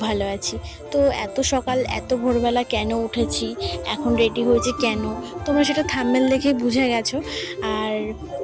ভালো আছি। তো এত সকাল এত ভোরবেলা কেন উঠেছি, এখন রেডি হয়েছি কেন, তোমরা সেটা থাম্বনেল দেখে বুঝে গেছো। আর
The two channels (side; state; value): both; identical; correlation 1.00